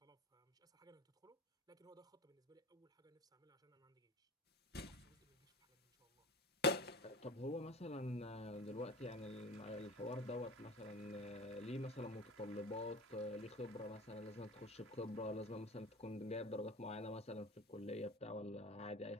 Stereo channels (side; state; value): both; normal; correlation 0.34